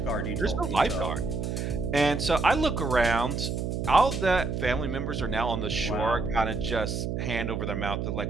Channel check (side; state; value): right; noise; hum, 2 dB below the sound